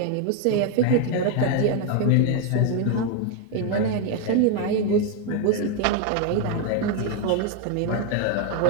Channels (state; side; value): different; both; correlation 0.01